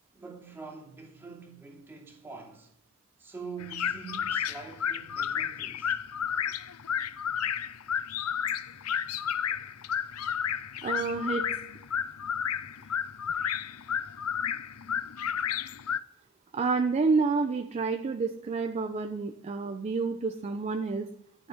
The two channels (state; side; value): normal; both; correlation 0.39